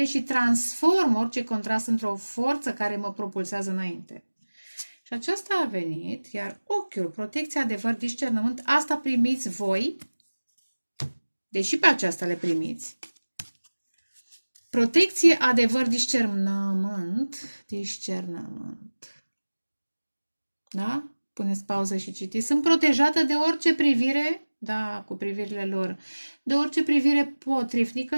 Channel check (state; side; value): inverted; both; correlation -1.00